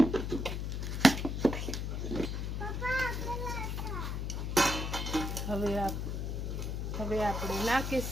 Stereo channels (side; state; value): left; noise; hum, 2 dB below the sound